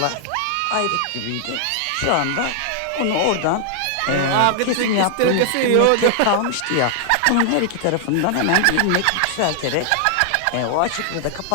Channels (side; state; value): both; different; correlation -0.01